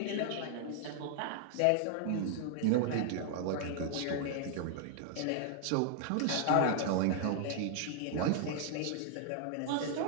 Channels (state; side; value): different; both; correlation 0.00